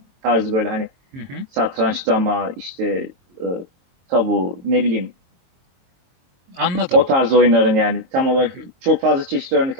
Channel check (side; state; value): left; late; 23 ms